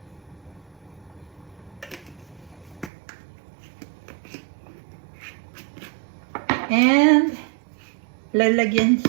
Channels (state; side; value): drops out; left; at 2.9 s